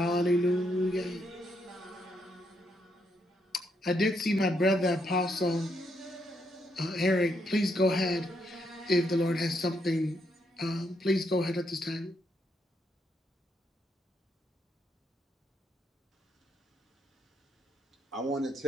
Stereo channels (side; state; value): both; normal; correlation 0.77